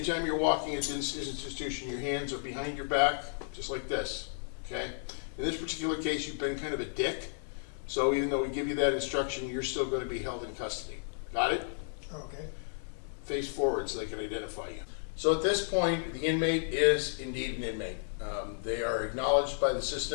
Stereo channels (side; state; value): right; silent; 56 dB below the other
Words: you're walking at this institution, your hands are behind your back, just like this. Okay? In this particular case, you've been kind of a dick. So even though we give you that instruction, you're still going to be held in custody. Got it? Okay. Face forward so they can identify you. So at this point, the inmate is indeed an inmate. They are acknowledged by the